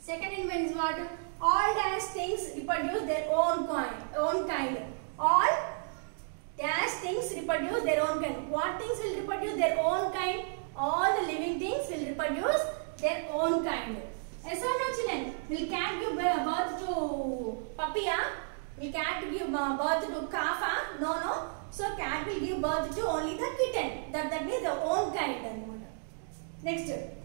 Second in means what? All dash things reproduce their own kind. All dash things reproduce their own kind. What things will reproduce their own kind? All the living things will reproduce their own kind. Yes or no, children? Will cat give birth to puppy? Will cat give birth to calf? No. So cat will give birth to only the kitten. That means the own kind. Next,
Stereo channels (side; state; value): left; silent; digital silence